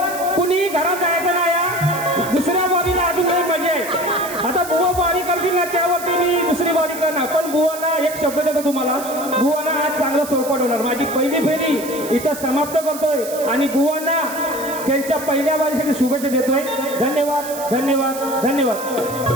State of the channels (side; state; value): right; noise; hiss, 12 dB below the sound